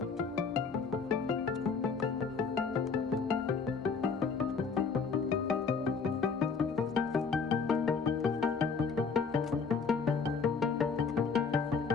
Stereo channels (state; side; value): quieter; right; 5.3 dB